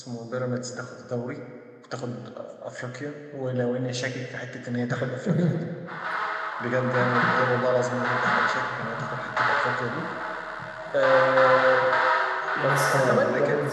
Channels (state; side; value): identical; both; correlation 1.00